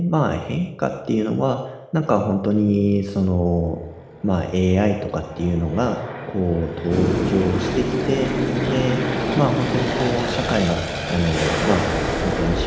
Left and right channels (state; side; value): identical; both; correlation 1.00